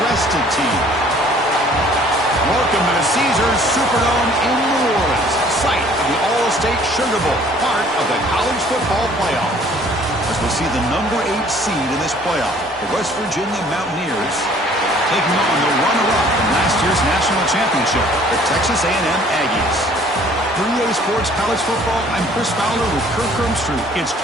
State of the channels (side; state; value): both; normal; correlation 0.56